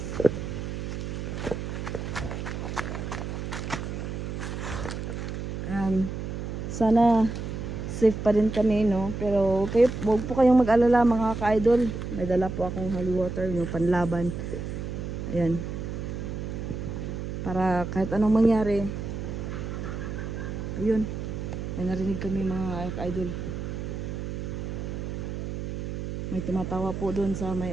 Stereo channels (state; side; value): noise; right; hum, 5 dB below the sound